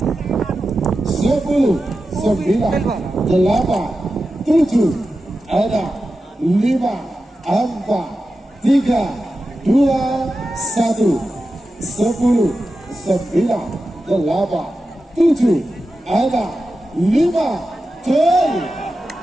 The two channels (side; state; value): both; normal; correlation 0.92